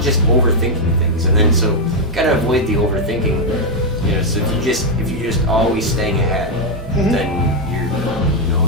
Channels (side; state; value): both; normal; correlation 0.01